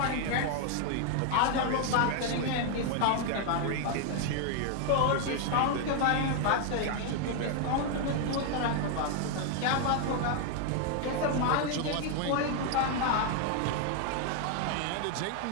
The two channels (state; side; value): different; both; correlation 0.00